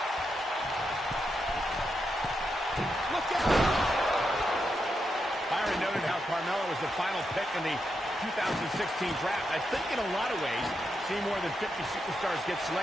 Look out! Byron noted how Carmella was the final pick in the 2016 draft. I think in a lot of ways, seeing more than 50 superstars get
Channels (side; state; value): both; normal; correlation 0.84